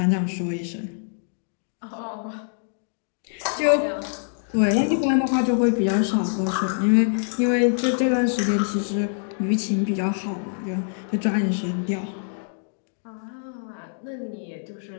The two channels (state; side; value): silent; right; digital silence